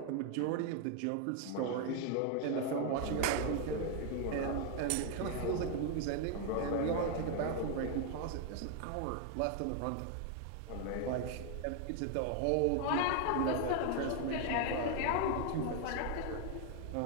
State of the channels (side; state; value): both; different; correlation 0.00